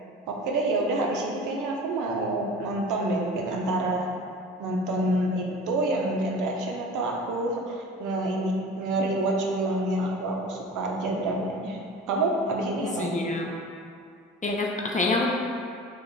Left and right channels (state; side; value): normal; both; correlation 0.38